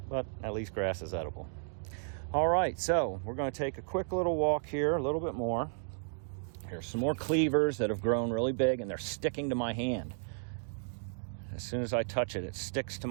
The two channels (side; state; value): left; silent; digital silence